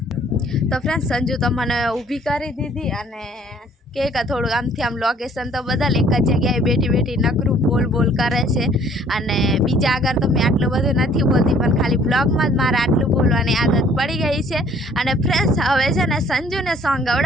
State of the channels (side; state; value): both; normal; correlation 0.58